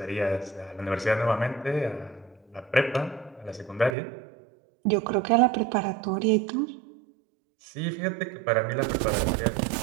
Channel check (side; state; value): left; drops out; at 4.0 s